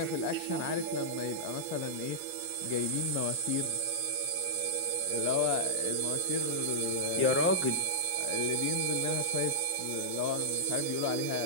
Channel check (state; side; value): normal; both; correlation -0.08